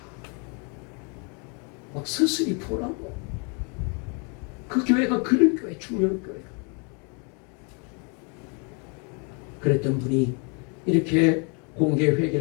막 서슬이 보라고. 그 교회가 그런 교회, 충령교회가. 그랬던 분이 이렇게 공개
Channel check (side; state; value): right; quieter; 35.9 dB